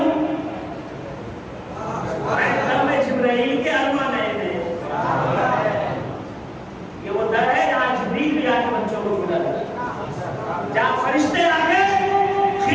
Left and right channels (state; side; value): identical; both; correlation 1.00